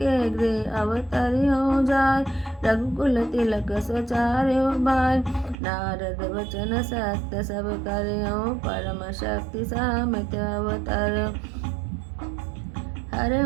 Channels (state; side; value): drops out; left; at 5.6 s